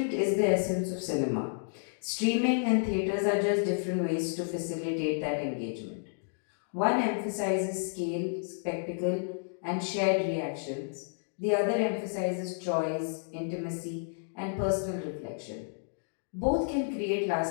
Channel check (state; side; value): silent; right; digital silence